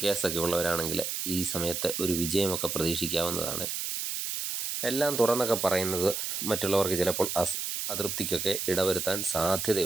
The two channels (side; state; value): right; noise; hiss, 3 dB below the sound